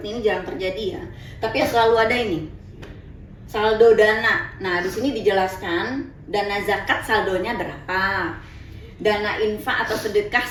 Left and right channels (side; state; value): both; identical; correlation 1.00